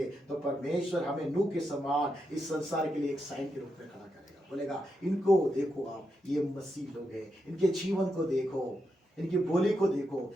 तो परमेश्वर हमें नूह के समान इस संसार के लिए एक साइन के रूप में खड़ा करेगा। बोलेगा इनको देखो, आप ये मसीह लोग हैं, इनके जीवन को देखो, इनकी बोली को देखो,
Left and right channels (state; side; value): normal; both; correlation 0.84